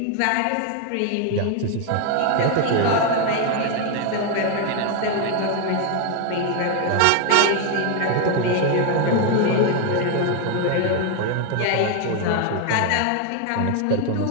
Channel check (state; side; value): different; both; correlation 0.01